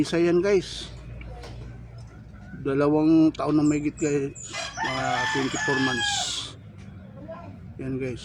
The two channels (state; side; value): identical; both; correlation 1.00